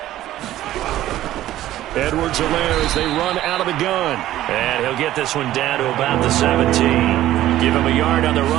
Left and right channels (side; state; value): left; quieter; 13.9 dB